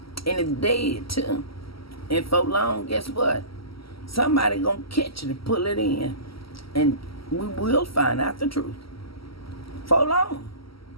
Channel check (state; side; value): late; right; 0.75 ms